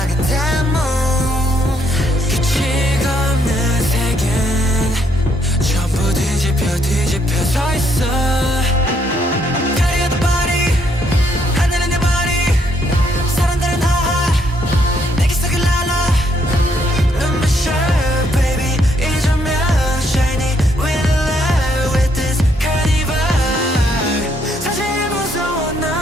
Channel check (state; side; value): normal; both; correlation 0.72